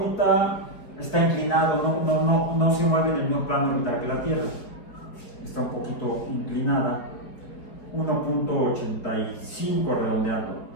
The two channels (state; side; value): late; right; 5.0 ms